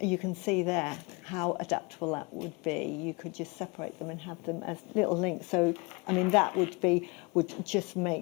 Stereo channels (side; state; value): right; quieter; 27.7 dB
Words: can see there how adaptable that would be. You could just separate them and have them as little links. So, I mean, that would just